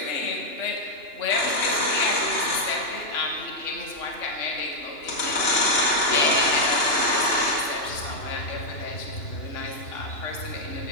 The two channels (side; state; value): right; late; 2.9 ms